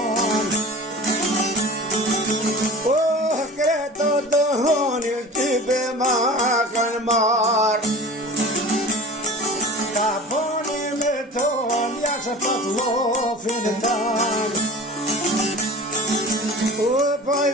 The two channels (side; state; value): both; normal; correlation 0.38